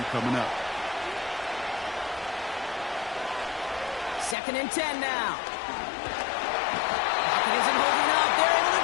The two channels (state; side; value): drops out; right; at 4.4 s